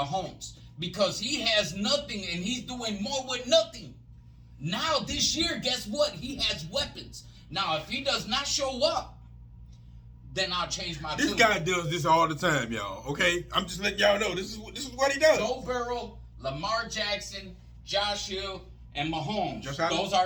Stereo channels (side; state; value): both; identical; correlation 1.00